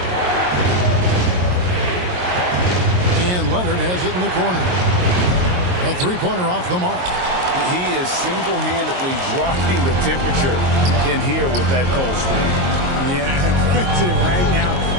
And Leonard has it in the corner. A three-pointer off the mark. He is single-handedly dropping the temperature in here with that cold streak. Yeah, right now,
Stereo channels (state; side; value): late; left; 22 ms